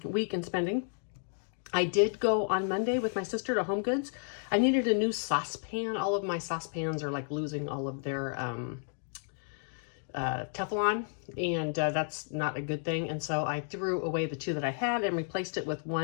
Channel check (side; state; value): right; silent; 56 dB below the other